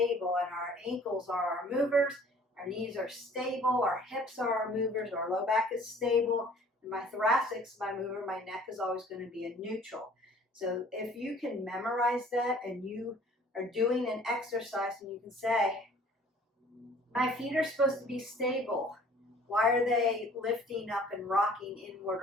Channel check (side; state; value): both; normal; correlation 0.52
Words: and our ankles are our movers, our knees are stable, our hips are our movers, our low back is stable, and my thoracic's my mover, my neck is always going to be a neutral. So if you can memorize that and you are doing an exercise and you can say, my feet are supposed to be stable. Why are they lifting up and rocking inward